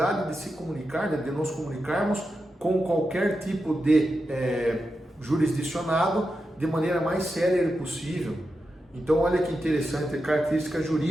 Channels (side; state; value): both; normal; correlation 0.89